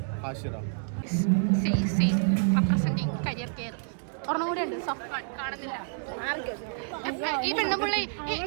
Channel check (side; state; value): left; silent; digital silence